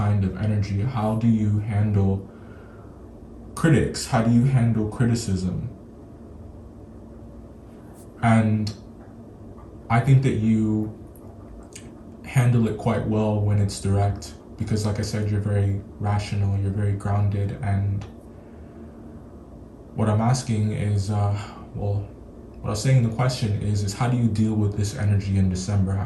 of energy? How do you handle critics? How do you handle criticism? And I think that you handle it quite well when it's direct, because like I said, you're very rational, you're very grounded. And what I'm asking is, what I was saying in the question is how do you deal with this energy in December?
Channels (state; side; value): identical; both; correlation 1.00